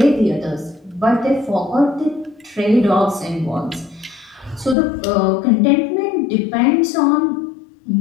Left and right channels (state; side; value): drops out; right; at 4.8 s